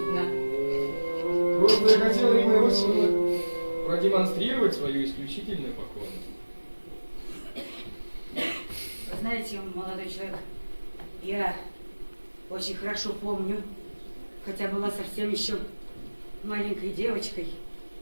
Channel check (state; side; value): inverted; both; correlation -1.00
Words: Просто я хотел, Ирина Иосифовна, продемонстрировать свою исключительную покорность. Вы знаете, молодой человек, я очень хорошо помню, хотя была совсем еще маленькой девочкой,